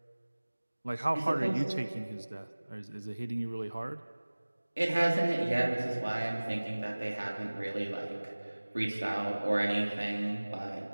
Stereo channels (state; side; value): inverted; both; correlation -1.00